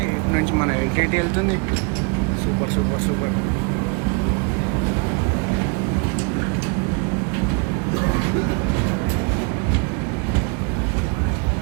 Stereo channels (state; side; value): quieter; left; 33.5 dB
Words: ఇటు నుంచి మన ఎల్టీటీ వెళ్తుంది. Super super super.